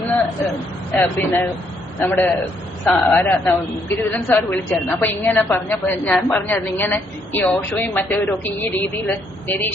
പിന്നെ നമ്മുടെ ഗിരിധരൻ സാർ വിളിച്ചായിരുന്നു. അപ്പൊ ഇങ്ങനെ പറഞ്ഞപ്പോ ഞാൻ പറഞ്ഞായിരുന്നു, ഇങ്ങനെ ഈ ഓഷോയും മറ്റവരും ഒക്കെ ഈ രീതിയിൽ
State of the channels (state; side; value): normal; both; correlation 0.72